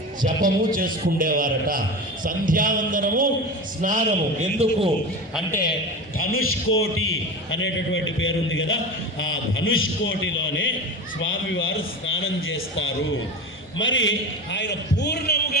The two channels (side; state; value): both; normal; correlation 0.28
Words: జపము చేసుకుండేవారట. సంధ్యావందనము, స్నానము. ఎందుకు అంటే ధనుష్కోటి అనేటటువంటి పేరుంది కదా, ఆ ధనుష్కోటిలోనే స్వామివారు స్నానం చేస్తారు. మరి ఆయన